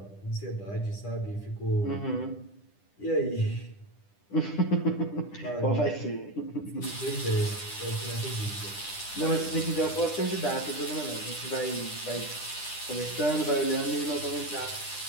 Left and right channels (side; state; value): right; late; 10 ms